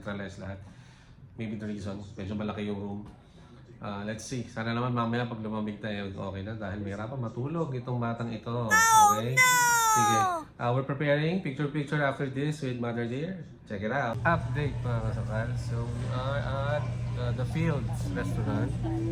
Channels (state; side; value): identical; both; correlation 1.00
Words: lahat. Maybe the reason, medyo malaki yung room. Let's see. Sana naman mamaya pag lumamig tayo, okay na dahil may hirapan matulog itong batang ito. Okay? Sige. We're preparing picture after this with Mother Dear. Check it out. Update mga kasakal. So we are at the Fields Restaurant.